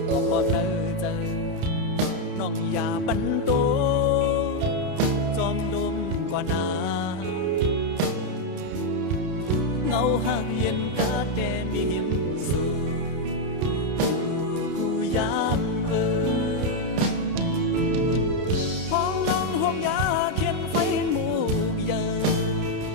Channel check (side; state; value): left; late; 31 ms